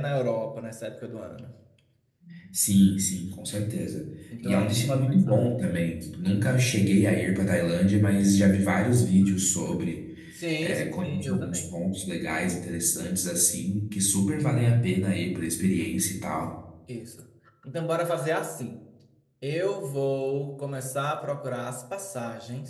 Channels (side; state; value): both; identical; correlation 1.00